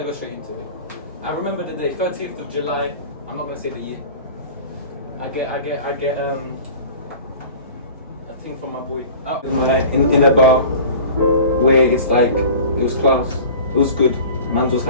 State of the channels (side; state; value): both; inverted; correlation -0.41